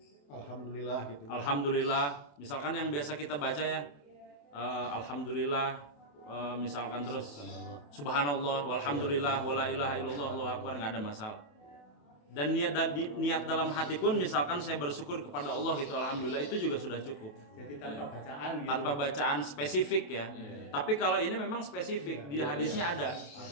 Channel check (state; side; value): late; right; 28 ms